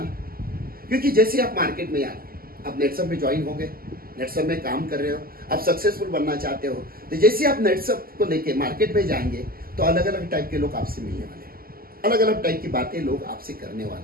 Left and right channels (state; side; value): late; left; 0.42 ms